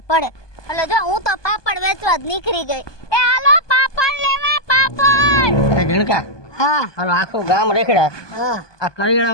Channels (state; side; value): late; right; 1.2 ms